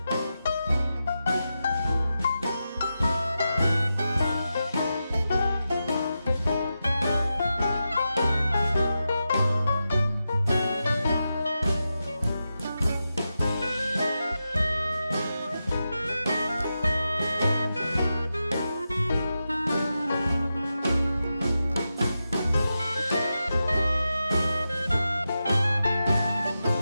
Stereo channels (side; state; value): both; inverted; correlation -0.90